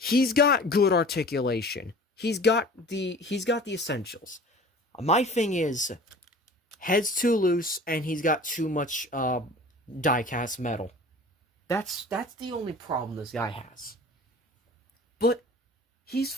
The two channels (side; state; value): both; normal; correlation 0.43